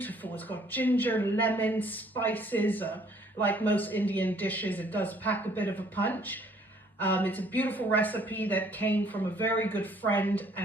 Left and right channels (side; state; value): both; normal; correlation 0.61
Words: It's got ginger, lemon, spices. Like most Indian dishes, it does pack a bit of a punch. It's a beautiful recipe that came from a very good friend